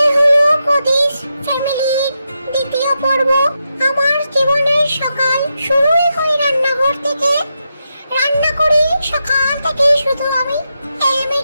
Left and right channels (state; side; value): inverted; both; correlation -0.86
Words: হলো কদিস ফ্যামিলির দ্বিতীয় পর্ব। আমার জীবনের সকাল শুরুই হয় রান্নাঘর থেকে। রান্না করি সকাল থেকে শুধু আমি